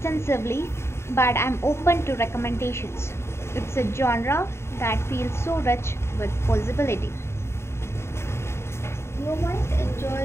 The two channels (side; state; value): right; late; 0.13 ms